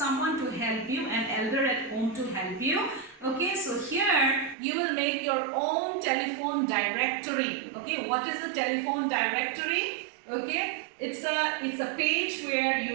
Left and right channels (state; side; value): drops out; left; at 4.5 s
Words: to help you, an elder at home to help you. Okay, so here you will make your own telephone directory. Okay, what is a telephone directory? Okay, it's a page where